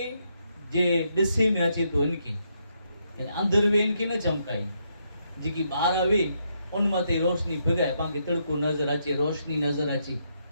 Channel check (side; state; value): both; inverted; correlation -0.77